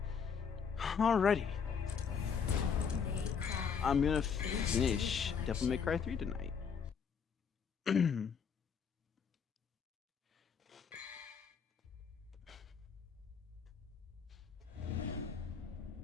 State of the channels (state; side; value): quieter; right; 6.6 dB